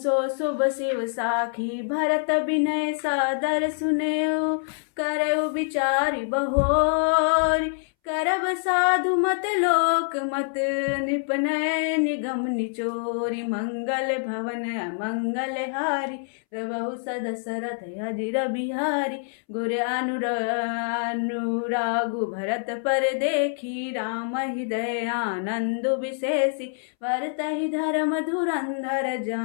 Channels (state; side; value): silent; right; 61 dB below the other